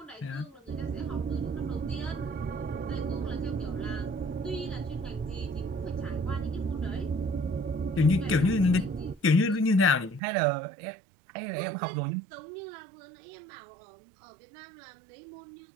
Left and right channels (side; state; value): left; drops out; at 10.2 s